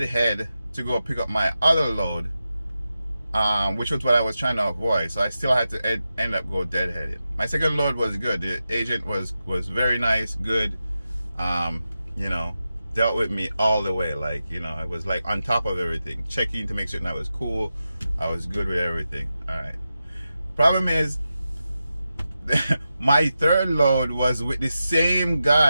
to go pick up my other load, which was what I was trying to avoid. So I still had to end up go deadheaded. My second load was good. The agent was very nice, good. You know, dealt with me all the way. Like, you know, I was like on top of everything, checking to make sure that I was cool. I was good with everything. All right. Problem is, my third load was with the same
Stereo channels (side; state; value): both; inverted; correlation -0.91